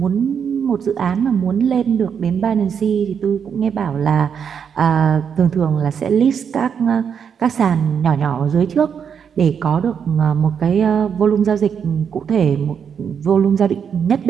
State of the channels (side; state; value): left; quieter; 7.3 dB